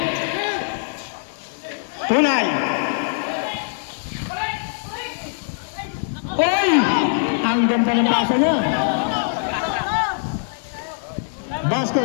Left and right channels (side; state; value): right; silent; digital silence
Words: Punay. Oy! Ang ganda ng pasa niya.